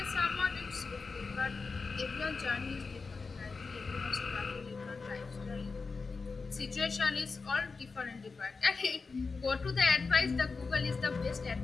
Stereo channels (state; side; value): quieter; right; 4.4 dB